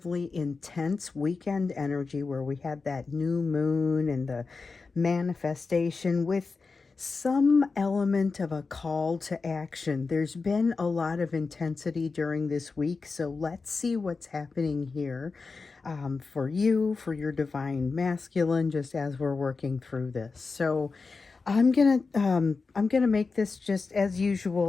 intense weekend energy where we had that new moon and the manifestation with some element of a call to action, there's been a lot of intensity during this week. So, let's see what's happening here for you, for your divine masculine, just as we're working through this. So I'm gonna make this just as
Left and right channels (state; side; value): quieter; right; 4.3 dB